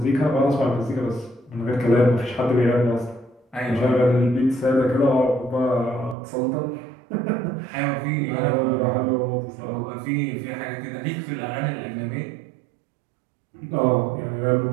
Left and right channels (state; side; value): drops out; left; at 6.2 s